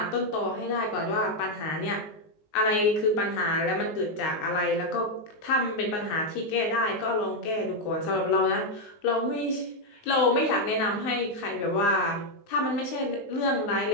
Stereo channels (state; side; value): late; right; 19 ms